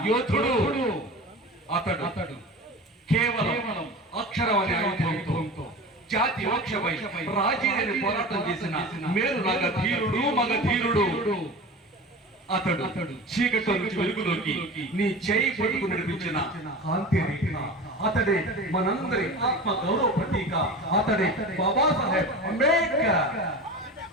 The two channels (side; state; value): both; normal; correlation 0.33